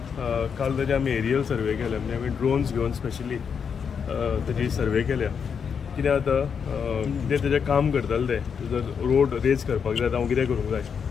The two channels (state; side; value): quieter; right; 6.7 dB